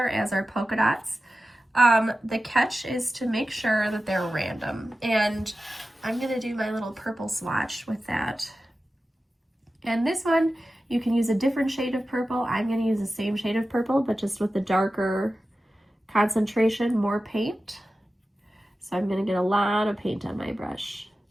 as are polka dots. The catch is to make sure that they're random, and I'm gonna do my little purple swatch with that. And this one, you can use a different shade of purple. I'm gonna use the same shade of purple, but just with the darker concentration, more paint. So I'm gonna get a lot of paint on my brush.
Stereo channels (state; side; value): normal; both; correlation 0.94